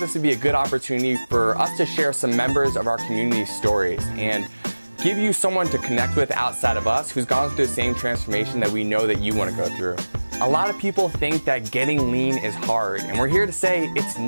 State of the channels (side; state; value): both; inverted; correlation -1.00